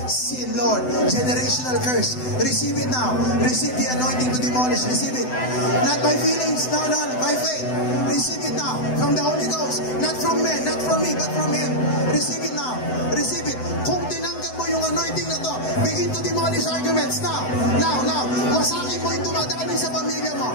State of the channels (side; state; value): right; late; 7.9 ms